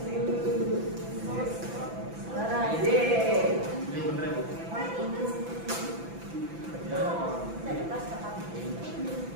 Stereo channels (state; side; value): late; left; 6.0 ms